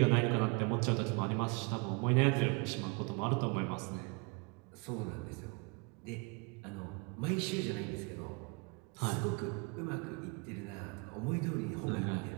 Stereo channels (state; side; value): quieter; left; 30.7 dB